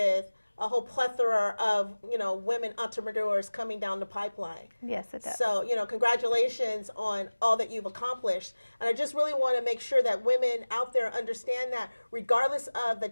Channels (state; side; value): inverted; both; correlation -1.00